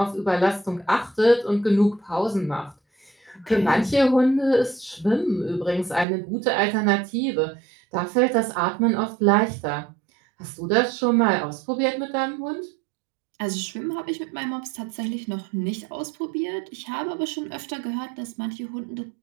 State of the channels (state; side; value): drops out; left; at 6.1 s